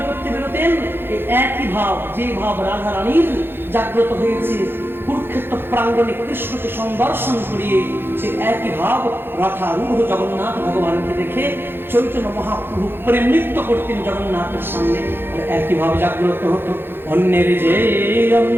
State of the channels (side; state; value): left; late; 0.10 ms